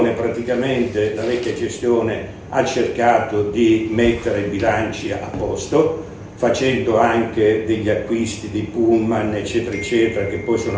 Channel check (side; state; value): both; identical; correlation 1.00